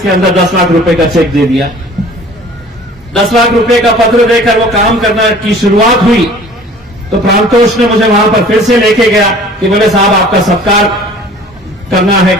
के अंदर 10 लाख रुपए का चेक दे दिया। 10 लाख रुपए का पत्र देकर वो काम करना की शुरुआत हुई तो प्रांतोष ने मुझे वहां पर फिर से लेके गया कि बोले साहब आपका सत्कार करना है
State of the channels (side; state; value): both; normal; correlation 0.48